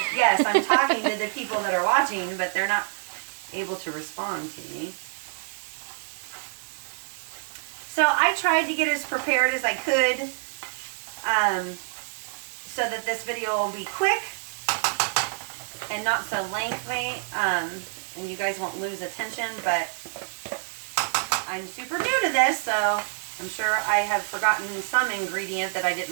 Yes, I'm talking to the people that are watching, but they're not able to respond to me. So I tried to get as prepared as I could so that this video will be quick. and not so lengthy, and you guys won't lose attention, but I'm super new to this, so I'm sure I have forgotten some ingredient that I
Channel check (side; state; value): left; silent; digital silence